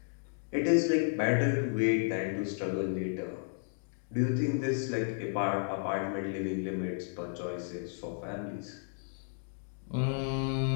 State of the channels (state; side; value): silent; right; digital silence